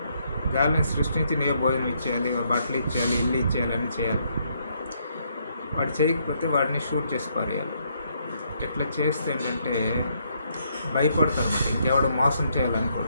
గాలిని సృష్టించి నీవే భోజనం ఇచ్చేయాలి, బట్టలు ఇచ్చేయాలి, ఇల్లు ఇచ్చేయాలి, అన్నీ చేయాలి. వాడు చేయకపోతే వాడిని షూట్ చేసి పారేయాలి. ఇట్లా చేస్తే ఏంటంటే భయపడతారు అన్నమాట, ఇంకెవడు మోసం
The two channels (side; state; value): both; inverted; correlation -0.73